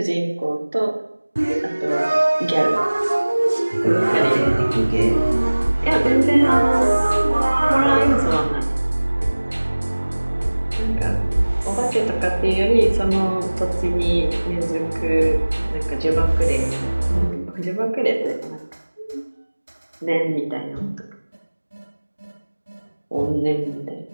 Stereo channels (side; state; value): both; inverted; correlation -1.00